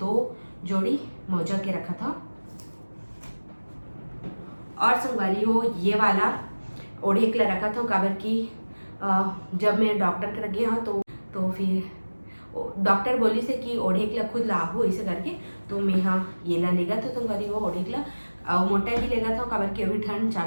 जोड़ी मोजा के रखा था। और संगवारी हो ये वाला ओढ़े के रखा था काबर की जब मैं डॉक्टर के लगे हाँ तो तो फिर डॉक्टर बोली से कि ओढ़ेकला खुद लाहू ऐसे करके, तो मैं हाँ ये ला लेगा तो संगवारी हो ओढ़ेकला और मोटा भी लेगा था काबर के अभी ठंड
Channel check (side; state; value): both; inverted; correlation -1.00